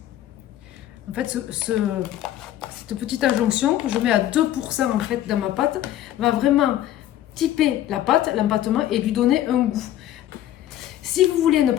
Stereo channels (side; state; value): right; quieter; 12.6 dB